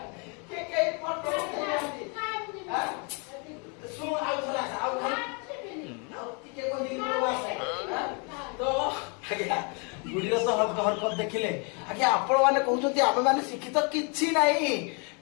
गुड़ीर तो हरकत देखिले आगे आपण माने कहउछथि आमे माने शिक्षित किछि नाही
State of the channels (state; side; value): quieter; right; 35.1 dB